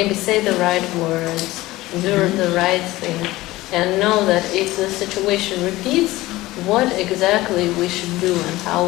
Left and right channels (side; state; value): right; quieter; 18.2 dB